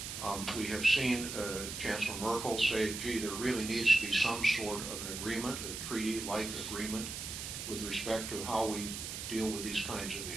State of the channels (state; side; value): noise; right; hiss, 6 dB below the sound